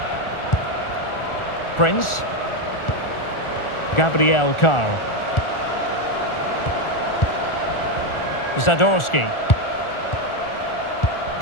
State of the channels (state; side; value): late; right; 1.4 ms